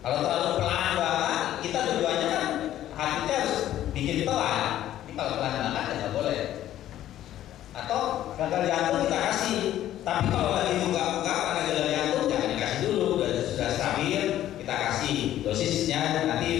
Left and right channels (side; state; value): right; quieter; 12.6 dB